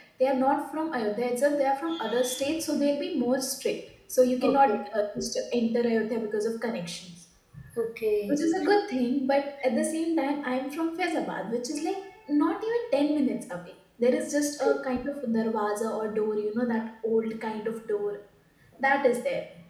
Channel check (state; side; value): identical; both; correlation 1.00